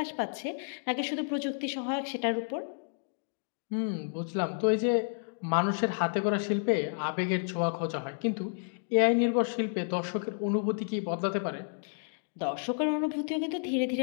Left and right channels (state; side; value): silent; right; digital silence